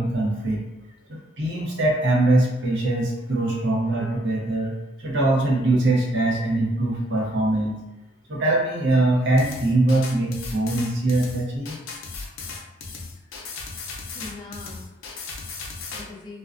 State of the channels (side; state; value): both; normal; correlation 0.71